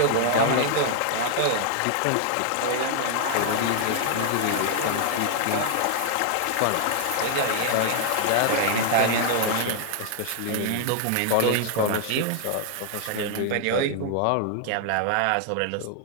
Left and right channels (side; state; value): both; different; correlation 0.00